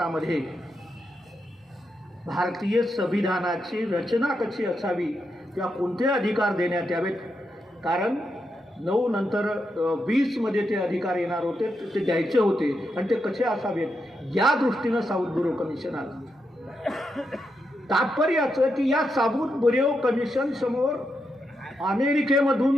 भारतीय संविधानाची रचना कशी असावी किंवा कोणते अधिकार देण्यात यावेत, कारण 9 नंतर 20 मध्ये ते अधिकार येणार होते, ते द्यायचे होते आणि ते कसे असावेत या दृष्टीनं साऊथ बुरो कमिशन आलं. तात्पर्य असं की या साऊथ बुरो कमिशन समोर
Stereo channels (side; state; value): both; normal; correlation 0.84